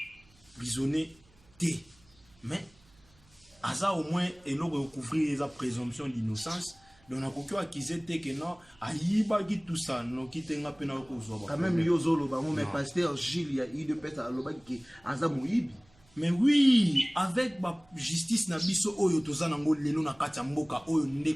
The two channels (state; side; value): noise; right; hum, 30 dB below the sound